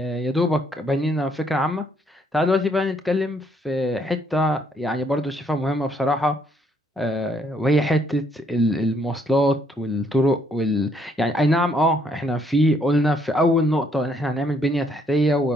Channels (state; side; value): normal; both; correlation 0.69